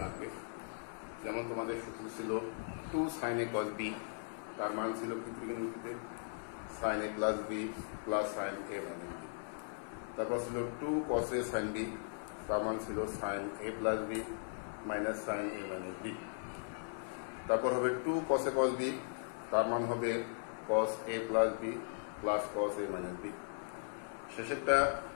লাগবে। যেমন তোমাদের সূত্র ছিল 2sin a cos b, তার মান ছিল কি ত্রিকোণমিতিতে sin a plus b plus sin a minus b। তারপর ছিল 2cos a sin b, তার মান ছিল sin a plus b minus sin a minus b। তারপর হবে 2cos a cos b, তার মান হবে cos a plus b plus cos a minus b। শেষেরটা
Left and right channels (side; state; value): right; silent; 52 dB below the other